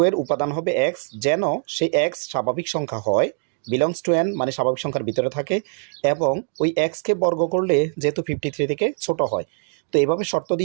এর উপাদান হবে এক্স, যেন সেই এক্স স্বাভাবিক সংখ্যা হয়, বিলংস টু এন মানে স্বাভাবিক সংখ্যার ভিতরে থাকে, এবং ওই এক্সকে বর্গ করলে যেহেতু 53 থেকে ছোট হয়। তো এইভাবে শর্ত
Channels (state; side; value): silent; left; digital silence